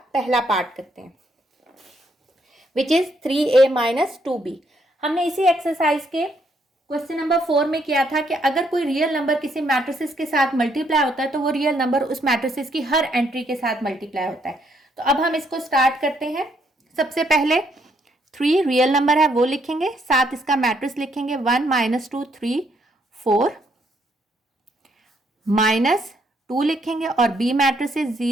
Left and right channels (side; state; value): both; normal; correlation 0.72